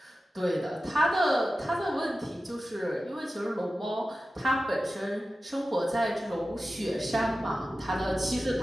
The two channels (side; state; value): both; normal; correlation 0.94